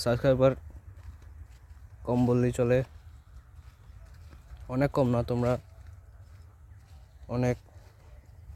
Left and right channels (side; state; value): both; identical; correlation 1.00